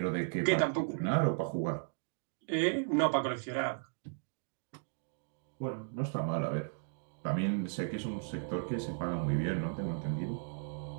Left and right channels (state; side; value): silent; left; digital silence